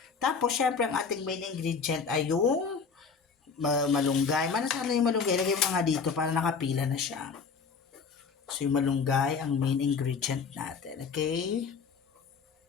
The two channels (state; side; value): quieter; right; 5.5 dB